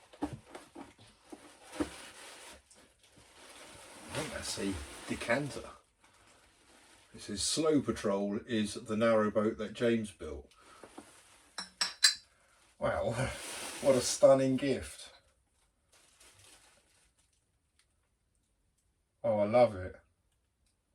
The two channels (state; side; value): identical; both; correlation 1.00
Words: I think that's a decanter. It says Slow Patrol is the narrowboat that James built. Wow, what a stunning gift. Oh, I love it.